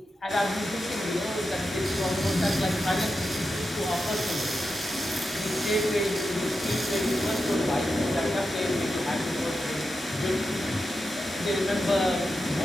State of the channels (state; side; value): normal; both; correlation 0.89